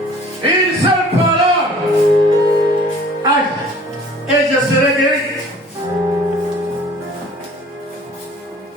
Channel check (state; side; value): normal; both; correlation 0.50